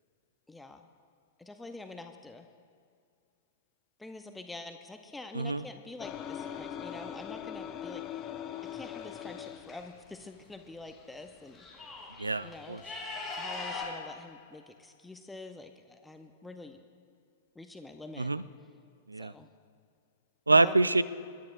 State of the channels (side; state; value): both; inverted; correlation -0.74